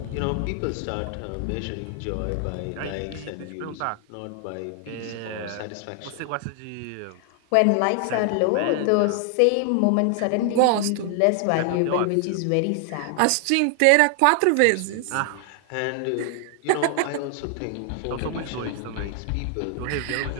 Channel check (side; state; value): both; different; correlation 0.00